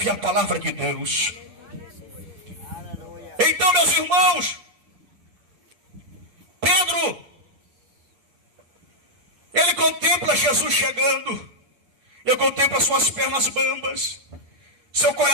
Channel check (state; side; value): late; left; 8.1 ms